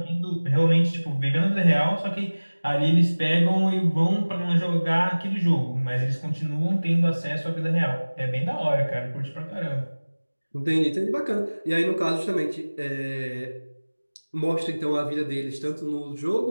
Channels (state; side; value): inverted; both; correlation -1.00